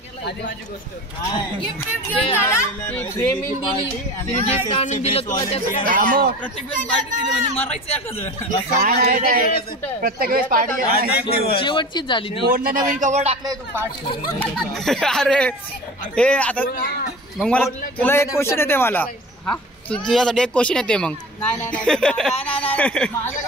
आधी माझी गोष्ट गिफ्ट घेऊन झाला फ्रेमिंग दिली आणि गिफ्ट आणून दिलं तुला त्याचं प्रत्येक वेळेस पार्टी दिली म्हणजे मारायचं एखादं प्रत्येक वेळेस पार्टी शेवटचीच झाली ती. कोणला नवीन कवर टाकलंय तू पार्टी. अरे हे आता मग मला तुला एक क्वेश्चन येते मला. हा तुझ्यासाठी एक क्वेश्चन येते मग.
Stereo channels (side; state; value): both; normal; correlation 0.35